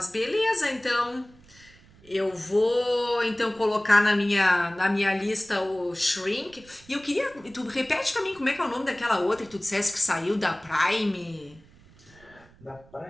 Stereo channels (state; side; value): noise; right; rumble, 26 dB below the sound